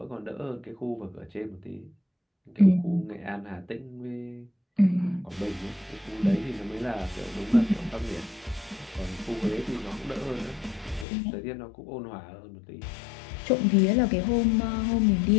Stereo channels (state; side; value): drops out; right; at 11.1 s